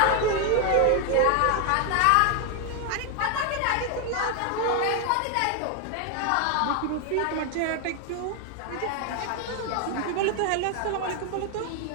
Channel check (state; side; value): different; both; correlation 0.00